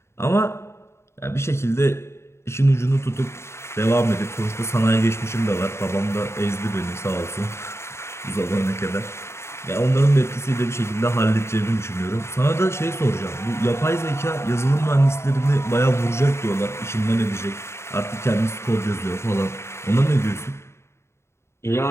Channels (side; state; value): right; late; 0.13 ms